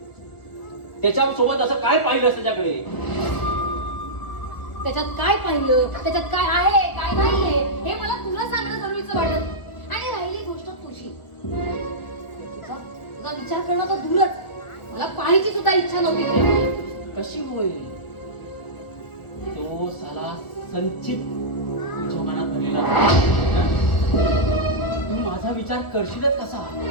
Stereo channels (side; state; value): right; late; 1.6 ms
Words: त्याच्यासोबत असं काय पाहिलंस त्याच्याकडे? त्याच्यात काय पाहिलं, त्याच्यात काय आहे काय नाहीये हे मला तुला सांगणं जरुरीचं वाटत. आणि राहिली गोष्ट तुझी, तुझा विचार करणं तर दूरच, मला पाहायची सुद्धा इच्छा नव्हती. कशी होईल? तो साला संचित तुझ्या मनात भरलेला हं? तू माझा विचार करशीलच कसा?